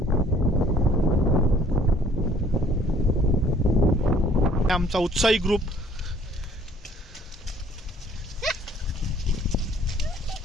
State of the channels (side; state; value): both; normal; correlation 0.57